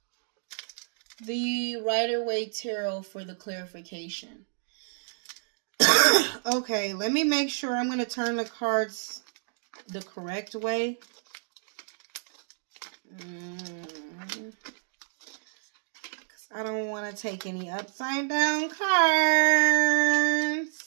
the Rider-Waite Tarot for the clarification. Okay, let me make sure I'm going to turn the cards the correct way. I don't want to take any upside down cards.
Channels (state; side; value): silent; left; digital silence